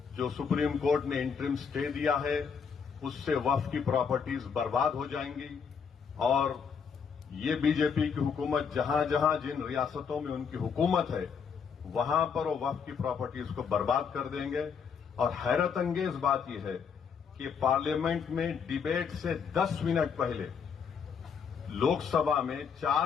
جو سپریم کورٹ نے انٹرم سٹے دیا ہے اس سے وقف کی پراپرٹیز برباد ہو جائیں گی، اور یہ BJP کی حکومت جہاں جہاں جن ریاستوں میں ان کی حکومت ہے وہاں پر وہ وقف کی پراپرٹیز کو برباد کر دیں گے، اور حیرت انگیز بات یہ ہے کہ پارلیمنٹ میں ڈیبیٹ سے 10 منٹ پہلے لوک سبھا میں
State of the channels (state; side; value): quieter; right; 6.5 dB